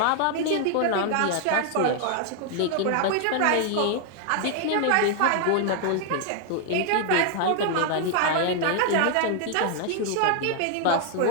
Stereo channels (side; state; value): both; different; correlation 0.00